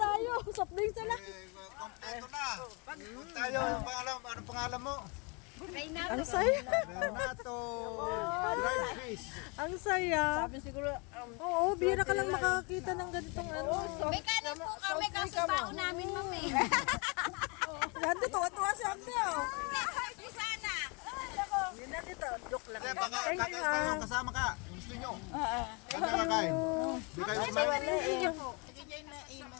Soft drinks na lang. Kompleto na. Tayo, ano pangalan mo? Reynaldo. Ang saya. Renato Dried Fish. Ang saya. Sabi siguro, Oo, bira ka lang makakita ng ganitong ano. May kanin po kami kasi bao namin, ma'am eh. Ganda, tuwa-tuwa si Ate. Di sana. yun na dito. Joke lang. Kaya baka Thank you, kayo kasama ka. Gusto nyo? Ano kakain? Di kayo kumain?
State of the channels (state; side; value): quieter; right; 31.3 dB